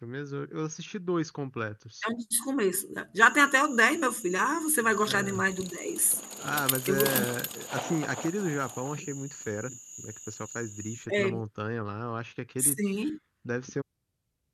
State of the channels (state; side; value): identical; both; correlation 1.00